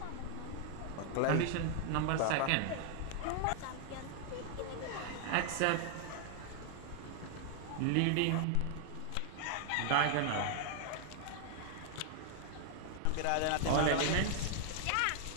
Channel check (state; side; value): different; both; correlation 0.00